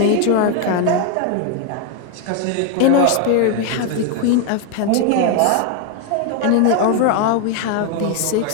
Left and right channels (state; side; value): different; both; correlation 0.01